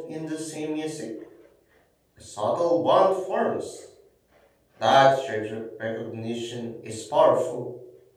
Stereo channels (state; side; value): identical; both; correlation 1.00